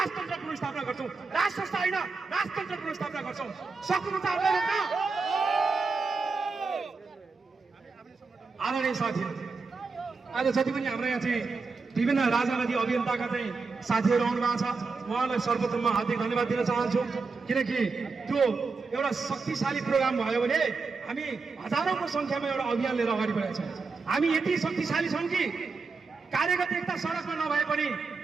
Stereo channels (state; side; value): quieter; left; 4.4 dB